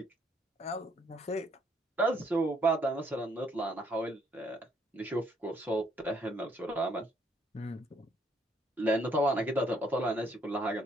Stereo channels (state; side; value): normal; both; correlation 0.68